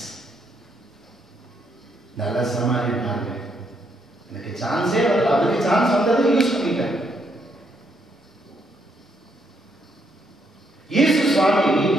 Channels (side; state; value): both; normal; correlation 0.74